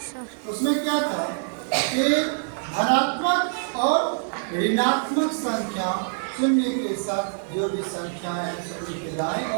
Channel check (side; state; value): left; silent; digital silence